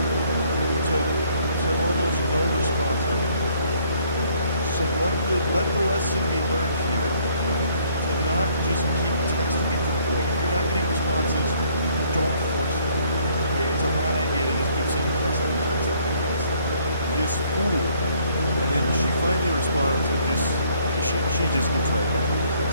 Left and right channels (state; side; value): inverted; both; correlation -0.63